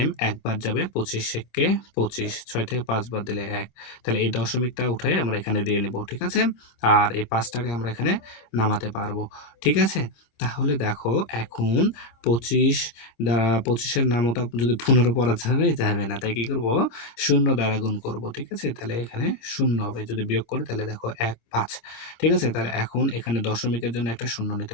একবার যাবে 25 থেকে 25, 6 থেকে 5 বাদ দিলে 1, তাহলে এই দশমিকটা উঠে আমরা এখানে দিয়ে নিব, ঠিক আছে। আর এই 5টাকে আমরা এখানে নামাতে পারবো, ঠিক আছে। তাহলে দেখো এখন 25 দ্বারা 25-এর নামতা যদি 15 পড়া যাবে না, তাই কি করব, শূন্য দ্বারা গুণ করব, ঠিক আছে। তাহলে এখানে শূন্য হবে, যদি বিয়োগ করি তাহলে দেখো 1 5, ঠিক আছে। তাহলে এখন এখানে দশমিকের জন্য একটা শূন্য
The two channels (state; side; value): late; right; 26 ms